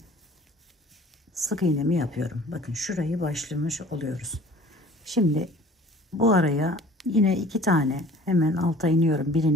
sık iğnemi yapıyorum. Bakın şurayı başlamış oluyoruz. Şimdi bu araya yine 2 tane hemen alta iniyorum.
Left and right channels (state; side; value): normal; both; correlation 0.49